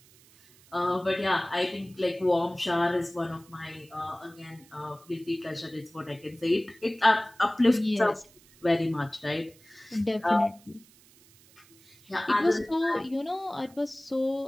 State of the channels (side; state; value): right; noise; hiss, 27 dB below the sound